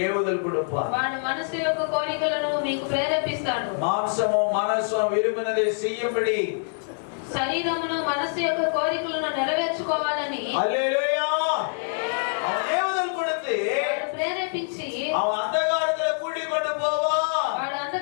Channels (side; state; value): right; silent; digital silence